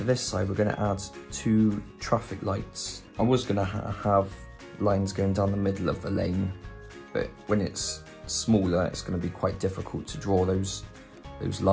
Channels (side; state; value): both; identical; correlation 1.00